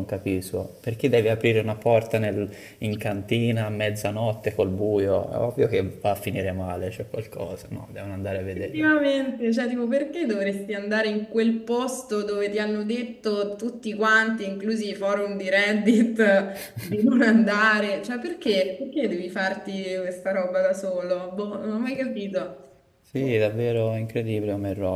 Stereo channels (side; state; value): both; identical; correlation 1.00